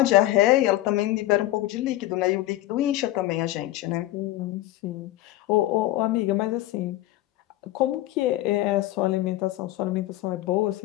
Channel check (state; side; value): quieter; right; 15.8 dB